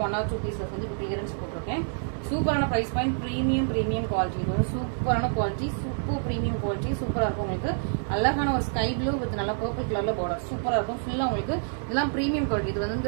1 or 2 பீசஸ் வந்து இப்போ கிளியரன்ஸ் போட்டிருக்கேன். சூப்பரான ப்ரைஸ் பாயிண்ட், ப்ரீமியம் குவாலிட்டி. இது வந்து சூப்பரான குவாலிட்டி, சூப்பர் ப்ரீமியம் குவாலிட்டி. சூப்பராக இருக்கும். உங்களுக்கு அழகான ஒரு ஸ்கை ப்ளூ வித் நல்லா பர்பிள் கலர்ல பார்டர் சூப்பராக இருக்கும். ஃபுல்லாக உங்களுக்கு இதெல்லாம் ப்ரீமியம் குவாலிட்டி. இது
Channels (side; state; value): left; silent; digital silence